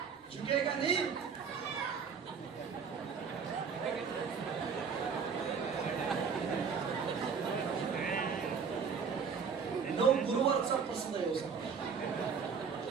झुकेगा नहीं. गुरुवारचा प्रसंग आहे.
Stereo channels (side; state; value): left; quieter; 6.1 dB